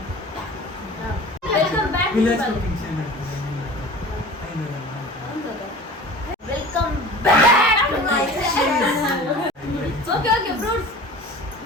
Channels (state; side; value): normal; both; correlation 0.40